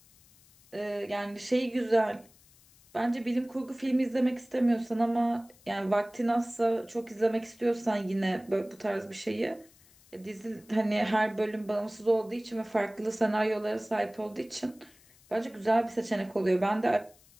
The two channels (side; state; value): left; noise; hiss, 28 dB below the sound